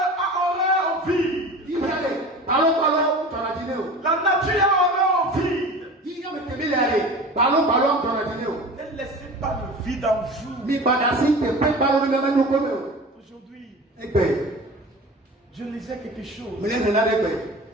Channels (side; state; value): both; normal; correlation 0.37